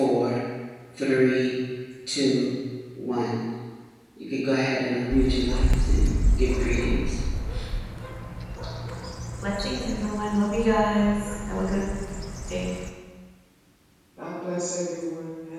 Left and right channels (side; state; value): both; identical; correlation 1.00